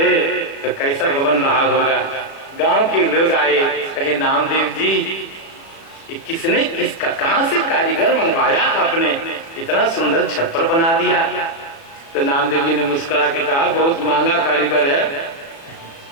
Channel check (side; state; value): right; late; 36 ms